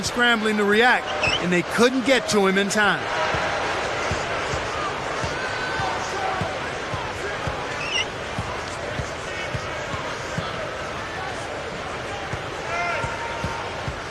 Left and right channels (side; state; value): both; identical; correlation 1.00